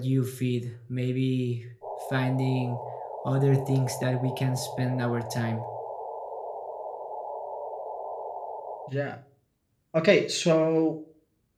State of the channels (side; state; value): both; identical; correlation 1.00